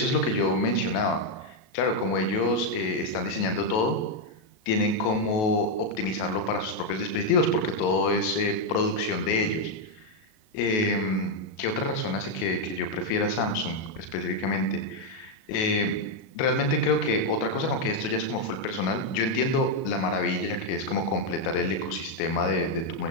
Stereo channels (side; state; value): right; late; 37 ms